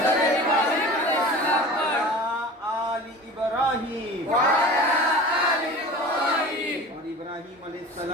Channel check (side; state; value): both; normal; correlation 0.37